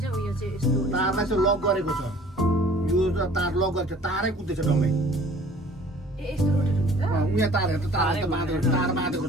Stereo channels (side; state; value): both; normal; correlation 0.51